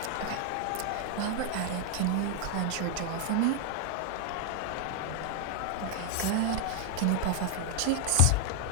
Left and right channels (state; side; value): different; both; correlation 0.00